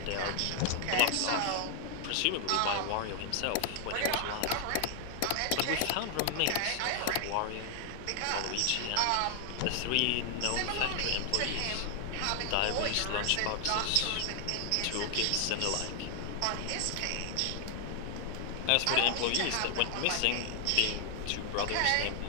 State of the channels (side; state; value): both; different; correlation 0.00